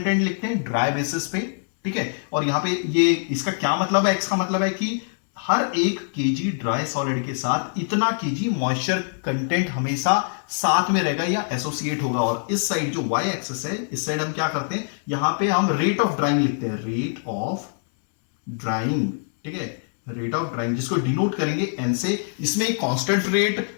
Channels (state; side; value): silent; right; 63 dB below the other